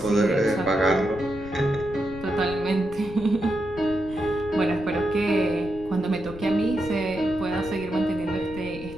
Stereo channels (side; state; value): left; noise; rumble, 14 dB below the sound